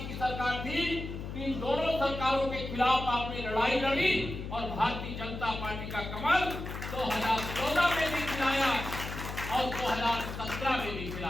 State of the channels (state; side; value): noise; left; hum, 7 dB below the sound